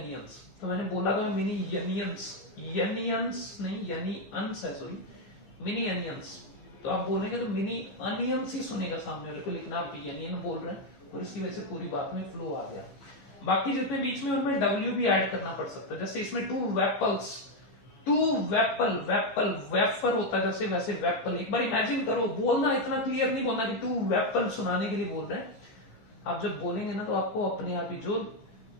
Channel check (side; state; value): right; late; 14 ms